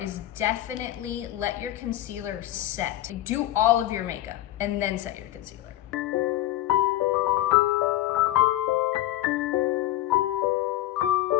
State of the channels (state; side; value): quieter; right; 14.5 dB